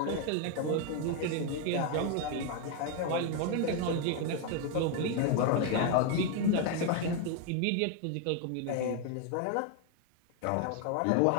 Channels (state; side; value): different; both; correlation 0.01